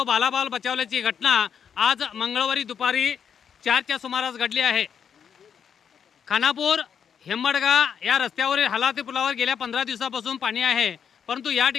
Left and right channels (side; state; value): right; quieter; 7.6 dB